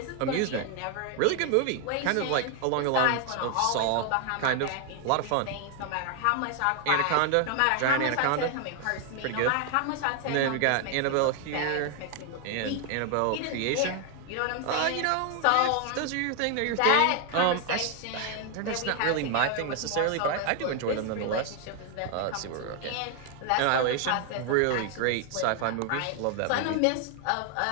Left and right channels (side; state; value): both; different; correlation 0.00